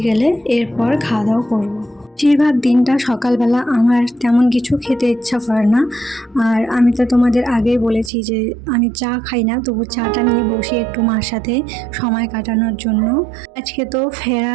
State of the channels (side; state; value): left; drops out; at 8.1 s